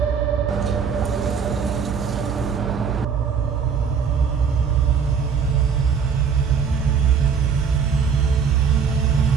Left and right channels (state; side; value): quieter; left; 6.4 dB